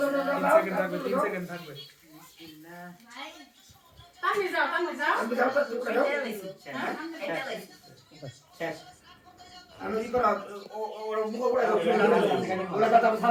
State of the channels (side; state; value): both; identical; correlation 1.00